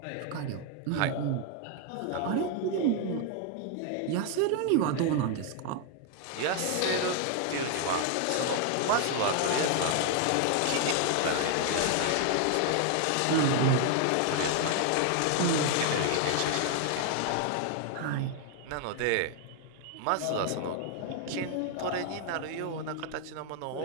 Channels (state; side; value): different; both; correlation 0.00